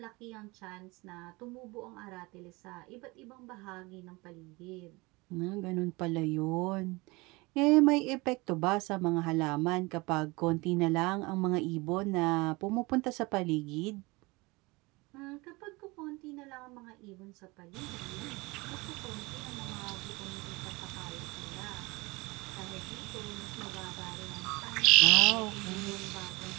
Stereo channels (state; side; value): quieter; left; 24.3 dB